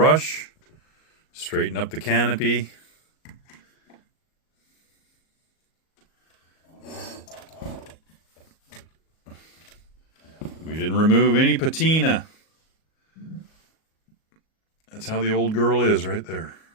Straighten up the canopy. We didn't remove any patina. That's how the old girl is right there.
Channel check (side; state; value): right; late; 38 ms